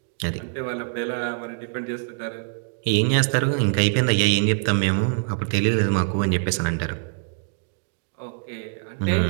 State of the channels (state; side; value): silent; left; digital silence